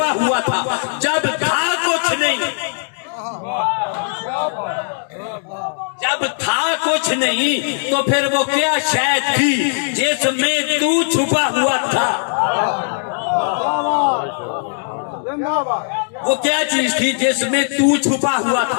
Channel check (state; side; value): silent; right; digital silence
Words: हुआ था, जब था कुछ नहीं, जब था कुछ नहीं तो फिर वो क्या शय थी जिसमें तू छुपा हुआ था? वो क्या चीज थी जिसमें तू छुपा हुआ